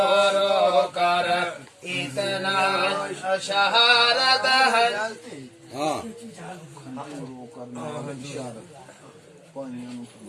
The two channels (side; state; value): both; identical; correlation 1.00